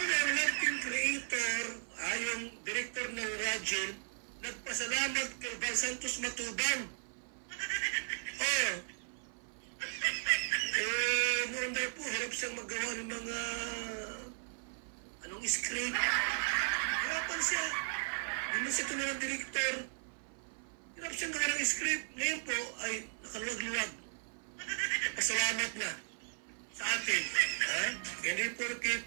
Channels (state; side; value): silent; left; 54 dB below the other